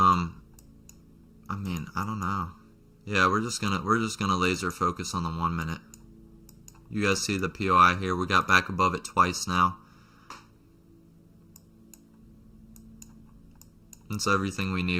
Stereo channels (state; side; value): identical; both; correlation 1.00